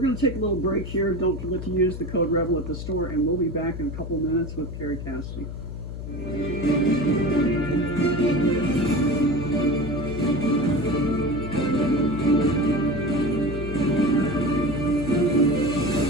going to take a little break here. Don't forget to use the code REBEL at the store, and we'll be back in a couple minutes with Kerry Cassidy.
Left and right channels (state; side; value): noise; left; hum, 7 dB below the sound